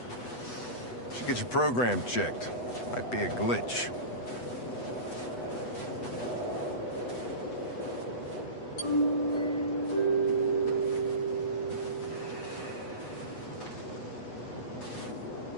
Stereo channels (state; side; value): late; right; 8.1 ms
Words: Should get your program checked. Might be a glitch.